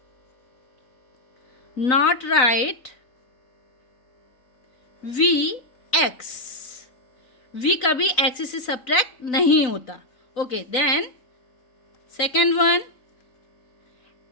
not write V X. V कभी X से subtract नहीं होता. Okay, then second one,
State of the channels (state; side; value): late; right; 4.0 ms